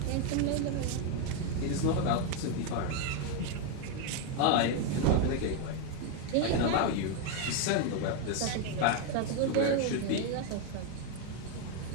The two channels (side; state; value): both; different; correlation 0.01